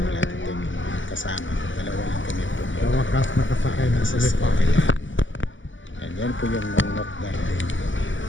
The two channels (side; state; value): right; late; 0.55 ms